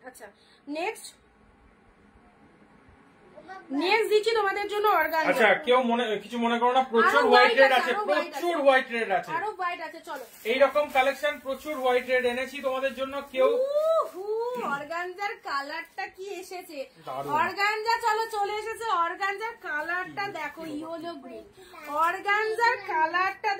আচ্ছা নেক্সট দিচ্ছি তোমাদের জন্য অর্গানজা। আচ্ছা কেউ কিছু মনে করো না, প্রচুর হোয়াইট রেড আছে, প্রচুর হোয়াইট রেড আছে, আরো হোয়াইট আছে। চলো এইরকম কালেকশন প্রচুর হোয়াইট রেড এনেছি তোমাদের জন্য। কেউ অর্গানজার কালারটা কি এসেছে, অর্গানজা চলো চলে এসেছে, অর্গানজার কালারটা দেখো, ইয়েলো গ্রিন, অর্গানজার কালারটা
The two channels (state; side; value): identical; both; correlation 1.00